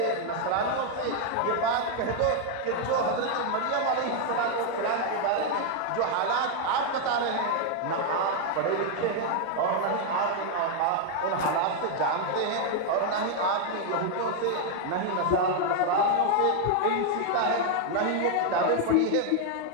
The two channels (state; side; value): different; both; correlation 0.00